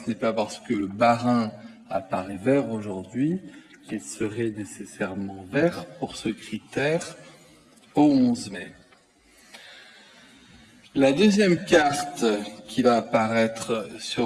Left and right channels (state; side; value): identical; both; correlation 1.00